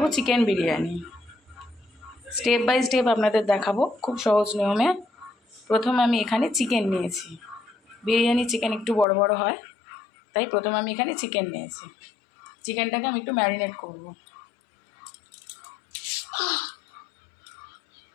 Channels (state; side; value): drops out; right; at 9.1 s